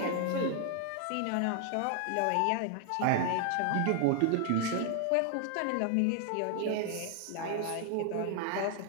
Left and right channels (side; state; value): both; different; correlation 0.00